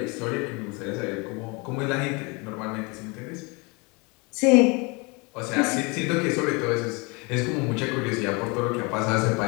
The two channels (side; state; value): right; quieter; 28.7 dB